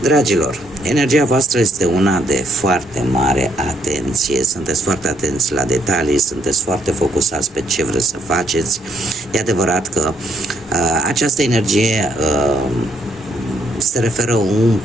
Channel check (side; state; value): both; normal; correlation 0.71